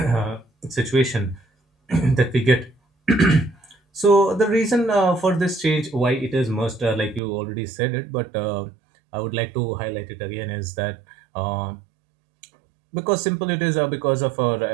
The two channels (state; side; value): drops out; left; at 7.2 s